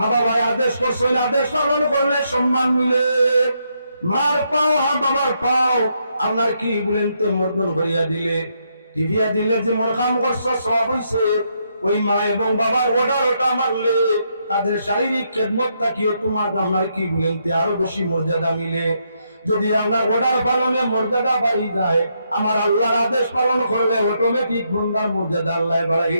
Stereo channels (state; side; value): inverted; both; correlation -0.77